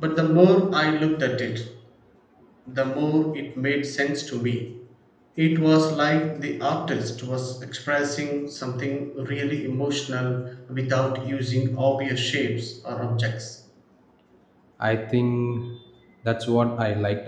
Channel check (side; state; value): both; identical; correlation 1.00